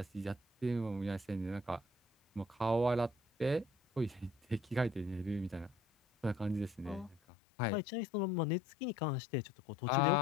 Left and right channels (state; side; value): drops out; right; at 7.2 s